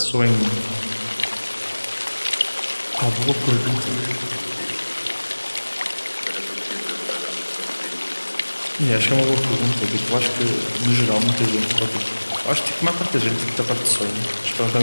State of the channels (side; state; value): both; inverted; correlation -1.00